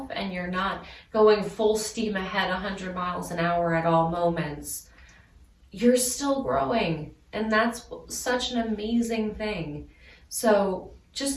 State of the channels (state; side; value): identical; both; correlation 1.00